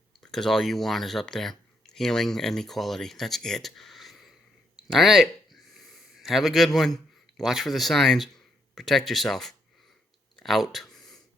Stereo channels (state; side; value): normal; both; correlation 0.75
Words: Because all you want is up there. Healing and equality. That's it. All right. Have a good one. Watch for the signs. Protect yourself. Out.